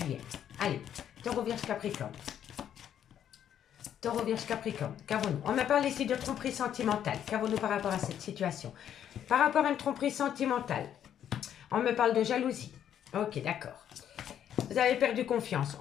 Allez, taureau, vierge, capricorne. Taureau, vierge, capricorne. Qu'avons-nous? On me parle ici de tromperie sentimentale. Qu'avons-nous par rapport à cette situation? Par rapport à une tromperie sentimentale, on me parle de jalousie. Ok, d'accord. Vous avez perdu confiance.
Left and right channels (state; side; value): quieter; right; 9.8 dB